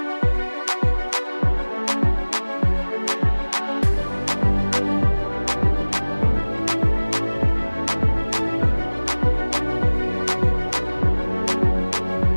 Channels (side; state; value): both; inverted; correlation -1.00